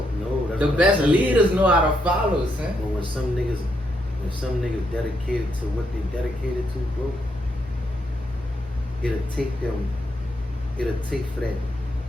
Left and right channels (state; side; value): normal; both; correlation 0.78